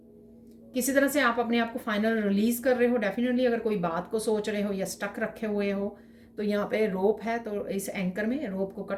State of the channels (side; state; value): both; identical; correlation 1.00